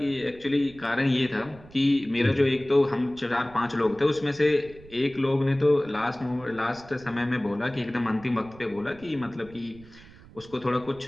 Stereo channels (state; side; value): noise; right; rumble, 21 dB below the sound